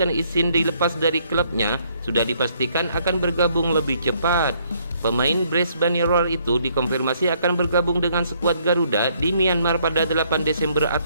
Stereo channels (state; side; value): inverted; both; correlation -0.67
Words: izin dilepas dari klubnya sudah dipastikan akan bergabung lebih cepat. Pemain Brisbane Roar itu dikonfirmasi akan bergabung dengan skuad Garuda di Myanmar pada 8 Desember